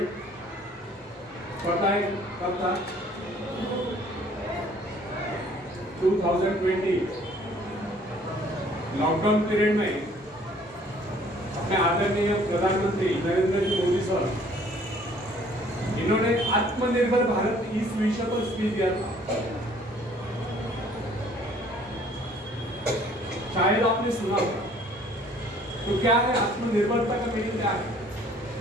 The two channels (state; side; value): normal; both; correlation 0.57